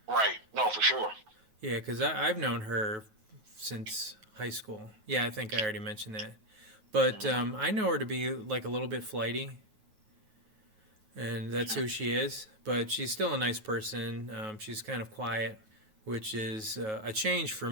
Right. No, for sure. Yeah, because I've known her since high school. Yeah, I think I already mentioned that. But I know her to be like a little bit flighty, and that's who she is. But she's still a nice person. She's kind of quiet, which is a change for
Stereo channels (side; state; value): left; late; 9.3 ms